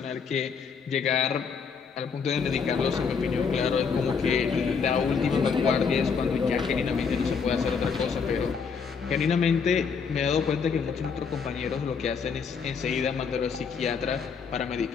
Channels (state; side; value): quieter; right; 5.9 dB